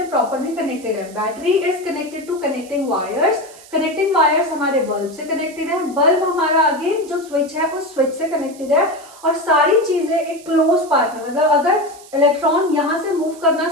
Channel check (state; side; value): noise; right; hiss, 21 dB below the sound